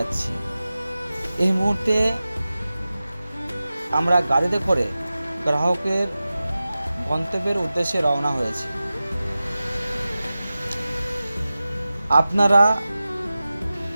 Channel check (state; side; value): inverted; both; correlation -0.95